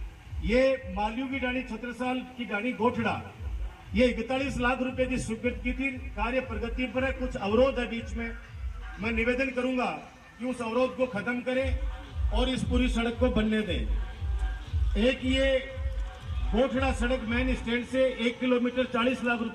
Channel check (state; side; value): identical; both; correlation 1.00